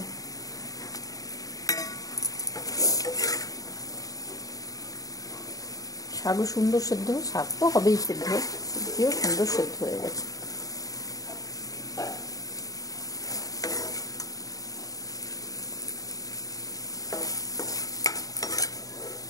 শাকও সুন্দর সেদ্ধ, শাক তো হবেই সেদ্ধ, সবজিও সুন্দর সেদ্ধ হয়ে গেছে।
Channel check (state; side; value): late; right; 0.17 ms